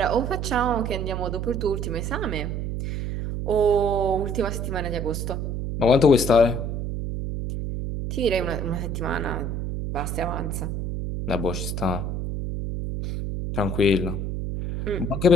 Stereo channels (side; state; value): right; noise; hum, 3 dB below the sound